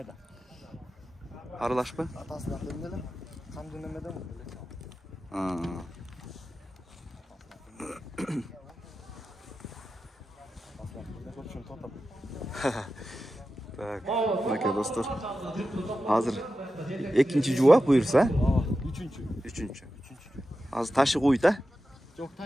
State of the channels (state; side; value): normal; both; correlation 0.92